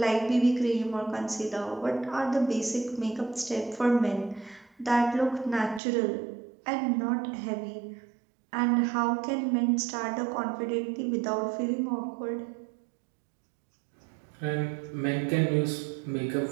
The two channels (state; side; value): drops out; left; at 5.8 s